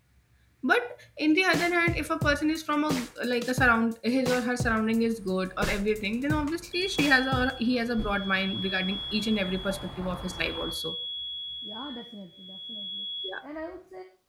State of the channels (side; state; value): both; identical; correlation 1.00